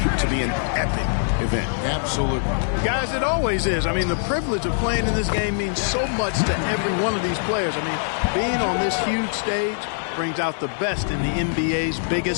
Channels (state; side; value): silent; right; digital silence